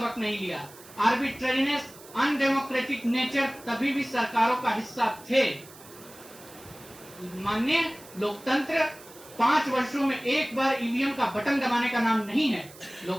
नहीं लिया। आर्बिट्रेरीनेस, अनडेमोक्रेटिक नेचर तभी भी सरकारों का हिस्सा थे। माननीय लोकतंत्र 5 वर्षों में एक बार ईवीएम का बटन दबाने का नाम नहीं है।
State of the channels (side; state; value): right; noise; hiss, 20 dB below the sound